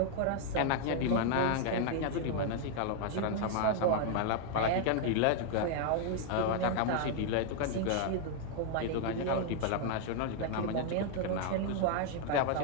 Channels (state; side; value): different; both; correlation 0.00